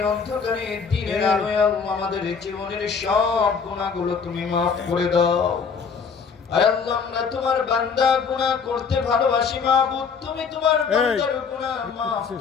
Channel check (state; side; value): quieter; right; 5.9 dB